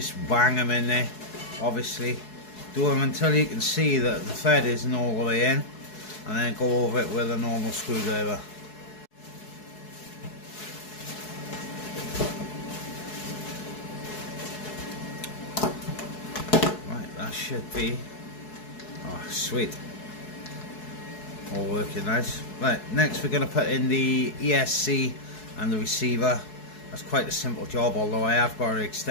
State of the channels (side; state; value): right; late; 4.7 ms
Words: bang them in there. Obviously, do them until you can see that the thread isn't all the way in, and then go over it with a normal screwdriver. Right, that should be, oh sweet, all working nice. Right, next we're going to put in the ESC and the receiver. That's quite a simple job, although I have got to